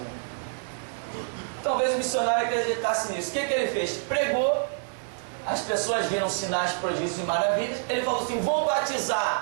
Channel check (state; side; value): silent; left; digital silence